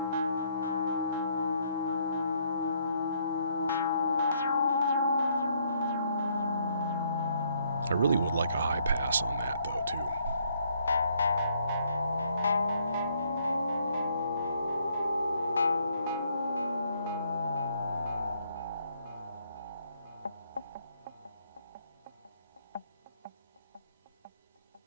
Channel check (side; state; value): both; inverted; correlation -0.69